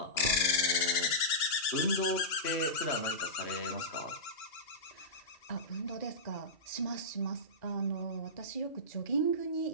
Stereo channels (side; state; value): right; late; 2.8 ms